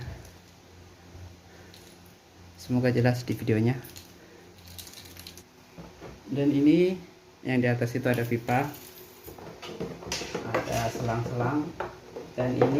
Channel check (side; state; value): both; identical; correlation 1.00